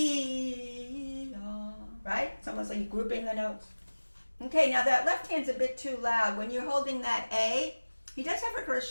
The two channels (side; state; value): both; inverted; correlation -1.00